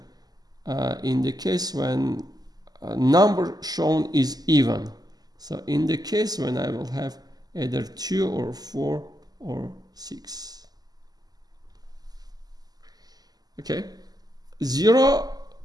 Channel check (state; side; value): late; left; 0.19 ms